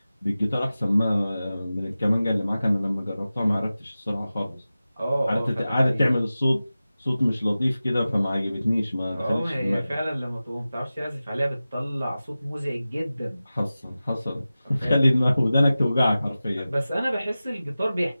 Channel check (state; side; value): inverted; both; correlation -0.95